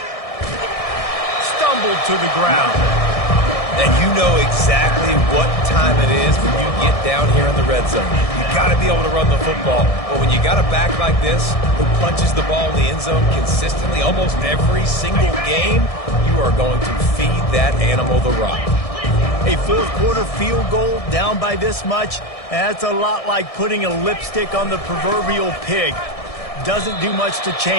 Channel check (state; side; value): late; right; 1.6 ms